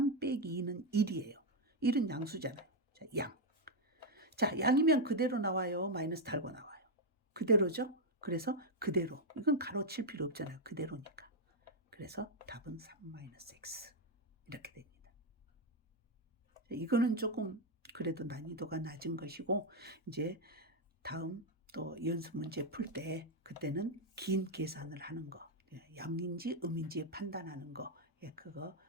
빼기 2는 1이에요. 1은 양수잖아요. 자, 양. 자, 양이면 그대로 나와요. 마이너스 달고 나와요. 그대로죠? 그래서 그대로. 이건 가로 칠 필요 없잖아요. 그대로니까. 그래서 답은 3-x. 이렇게 됩니다. 이거는 조금 그래도 난이도가 낮은 것이고, 이제 다음 또 연습 문제 풀 때 그때는 긴 계산을 하는 거, 양인지 음인지 판단하는 거, 그거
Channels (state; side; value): normal; both; correlation 0.02